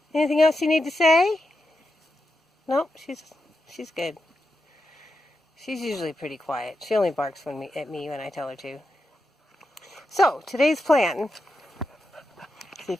Anything else you need to say? Nope, she's good. She's usually pretty quiet. She only barks at me when I tell her to. So, today's plan, see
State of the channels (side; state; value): both; normal; correlation 0.87